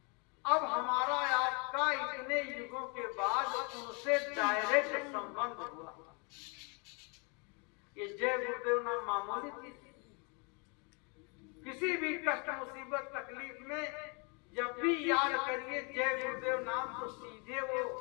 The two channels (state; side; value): quieter; right; 33.4 dB